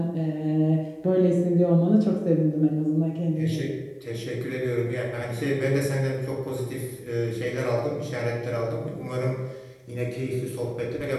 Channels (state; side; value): identical; both; correlation 1.00